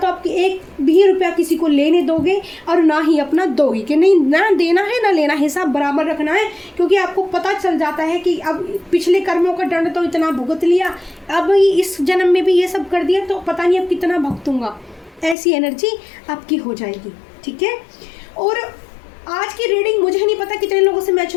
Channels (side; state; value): right; drops out; at 15.4 s